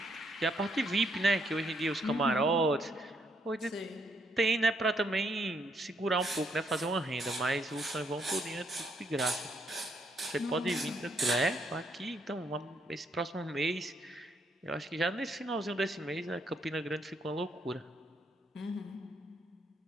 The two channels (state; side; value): normal; both; correlation 0.73